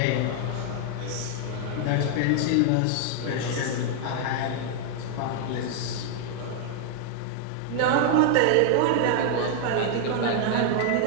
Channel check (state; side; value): different; both; correlation 0.00